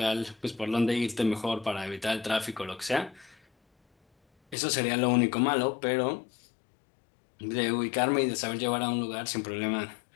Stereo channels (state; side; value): drops out; right; at 4.5 s